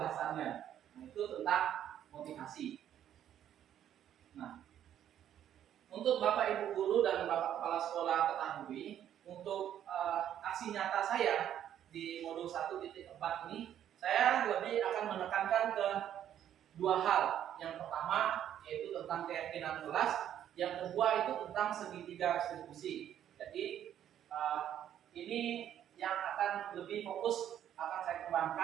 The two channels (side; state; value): left; quieter; 10.5 dB